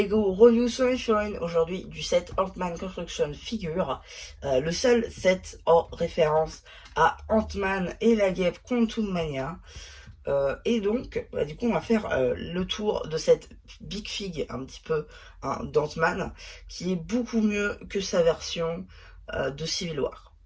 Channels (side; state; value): both; identical; correlation 1.00